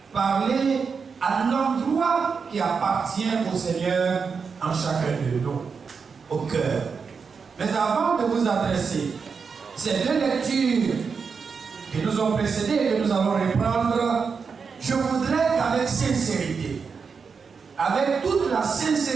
parler à l'endroit qui appartient au Seigneur en chacun de nous, au cœur. Mais avant de vous adresser ces deux lectures qui nous ont précédées et que nous allons reprendre, je voudrais qu'avec sincérité, avec toute la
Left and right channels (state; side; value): quieter; left; 5.6 dB